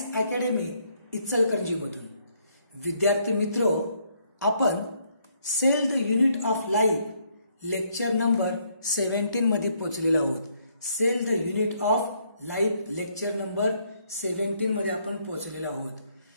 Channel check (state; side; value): inverted; both; correlation -0.70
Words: academy इचलकरंजीमधून. विद्यार्थी मित्रो, आपण cell the unit of life lecture number 17 मध्ये पोहोचलेलो आहोत. Cell the unit of life lecture number 17 मध्ये आपण पोहोचलेलो आहोत.